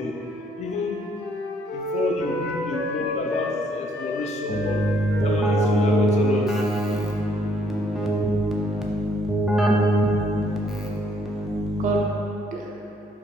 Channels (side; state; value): both; normal; correlation 0.66